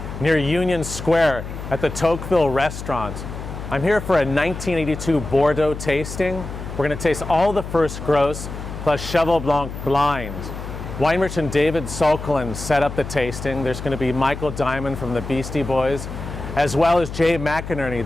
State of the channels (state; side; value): noise; left; hum, 9 dB below the sound